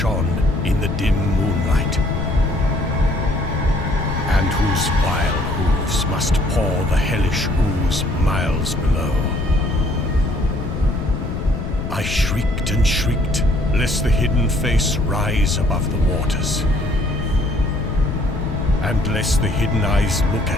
in the dim moonlight, and whose vile hooves must pour the hellish ooze miles below, I shrieked and shrieked, lest the hidden face rise above the waters, and lest the hidden eyes look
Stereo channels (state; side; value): noise; left; rumble, 4 dB below the sound